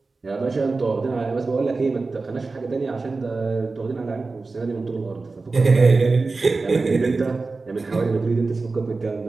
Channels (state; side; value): quieter; left; 3.8 dB